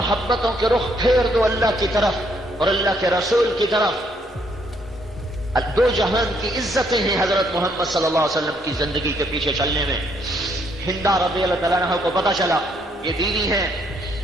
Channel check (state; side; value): normal; both; correlation 0.70